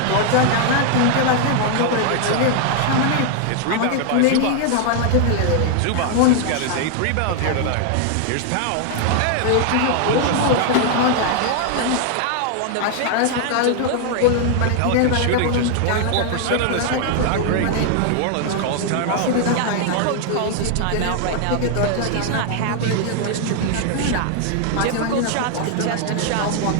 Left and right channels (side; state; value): both; different; correlation 0.00